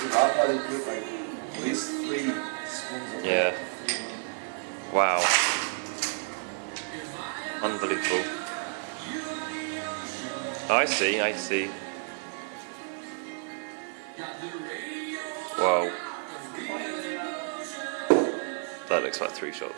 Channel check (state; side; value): silent; left; 56 dB below the other